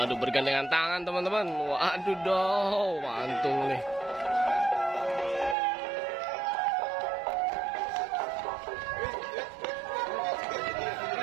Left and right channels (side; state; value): left; drops out; at 5.6 s